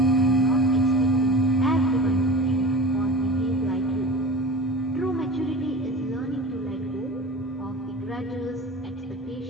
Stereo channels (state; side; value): normal; both; correlation 0.34